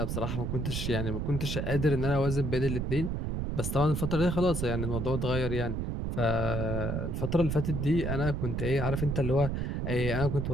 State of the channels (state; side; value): noise; right; rumble, 2 dB below the sound